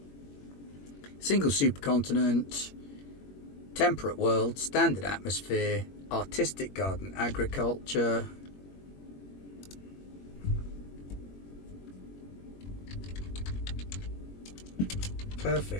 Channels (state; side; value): late; right; 21 ms